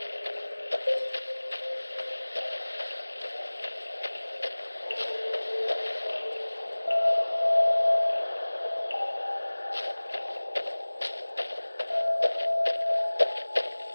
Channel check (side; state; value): both; inverted; correlation -1.00